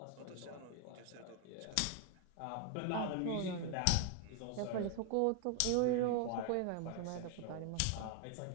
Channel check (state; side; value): different; both; correlation 0.00